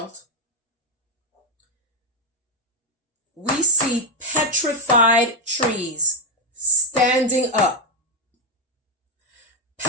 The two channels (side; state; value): both; normal; correlation 0.04